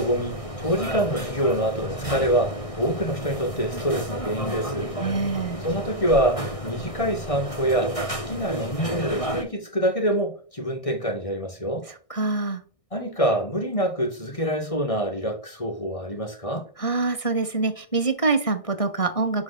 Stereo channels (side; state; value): right; late; 1.6 ms